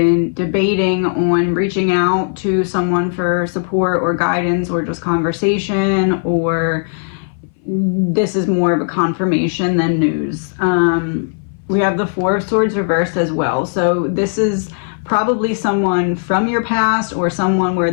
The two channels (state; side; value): silent; right; 61 dB below the other